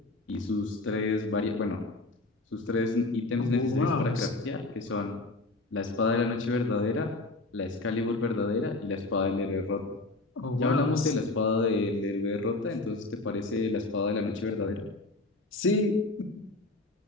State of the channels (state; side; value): quieter; right; 3.0 dB